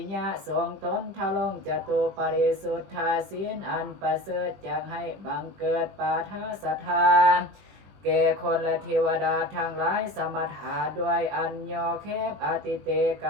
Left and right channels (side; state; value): left; late; 20 ms